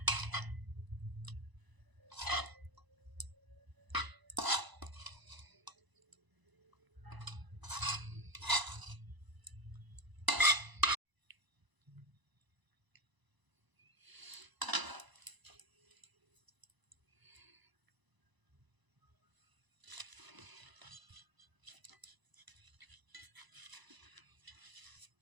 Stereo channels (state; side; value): late; left; 1.0 ms